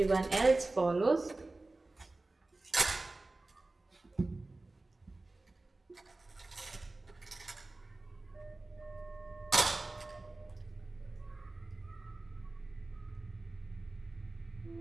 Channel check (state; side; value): quieter; left; 3.1 dB